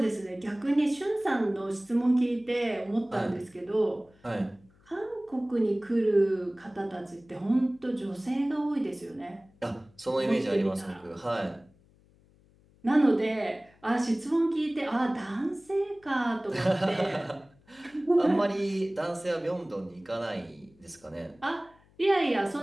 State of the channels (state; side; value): noise; left; hum, 30 dB below the sound